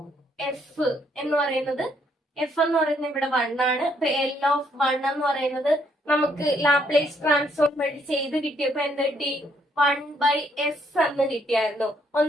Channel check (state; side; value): normal; both; correlation 0.70